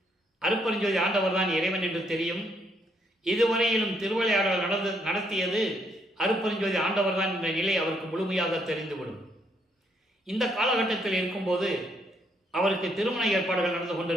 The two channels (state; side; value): normal; both; correlation 0.72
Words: அருப்பெருஞ்சோதி ஆண்டவர் தான் இறைவன் என்று தெரியும். இதுவரையிலும் திருவிளையாடல் நடத்தியது அருப்பெருஞ்சோதி ஆண்டவர் தான் என்ற நிலை அவருக்கு முழுமையாக தெரிந்துவிடும். இந்த காலகட்டத்தில் இருக்கும்போது அவருக்கு திருமண ஏற்பாடுகள் நடந்து